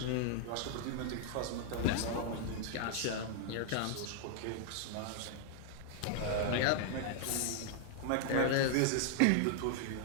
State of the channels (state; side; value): different; both; correlation -0.01